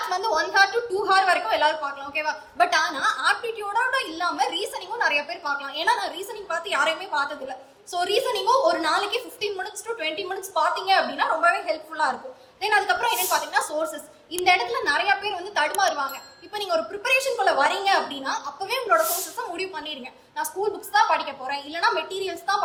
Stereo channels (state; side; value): identical; both; correlation 1.00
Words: வந்து 1 hour to 2 hour வரைக்கும் எல்லாரும் பார்க்கலாம், ஓகேவா. பட் ஆனா ஆப்டிடியூடோட இல்லாம ரீசனிங்கும் நிறைய பேர் பார்க்கலாம். ஏன்னா நான் ரீசனிங் பார்த்து யாரையுமே பார்த்தது இல்லை. ஸோ ரீசனிங்கும் ஒரு நாளைக்கு 15 minutes to 20 minutes பார்த்தீங்க அப்படின்னா ரொம்பவே ஹெல்ப்ஃபுல்லாக இருக்கும். தென் அதுக்கப்புறம் என்னன்னு பார்த்தீங்கன்னா சோர்சஸ். இந்த இடத்துல நிறைய பேர் வந்து தடுமாறுவாங்க. இப்போ நீங்கள் ஒரு ப்ரிப்பரேஷனுக்குள்ள வரீங்க அப்படின்னா அப்போவே உங்களோட சோர்சஸை முடிவு பண்ணிடுங்க. நான் ஸ்கூல் புக்ஸ் தான் படிக்க போகிறேன், இல்லைனா மெட்டீரியல்ஸ் தான்